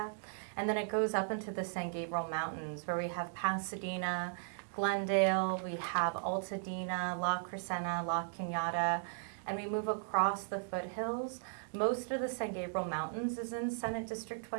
And then it goes up into the San Gabriel Mountains where we have Pasadena, Glendale, we have Altadena, La Crescenta, La Cañada, and we move across the foothills. Most of the San Gabriel Mountains is in Senate District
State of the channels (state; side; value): silent; left; digital silence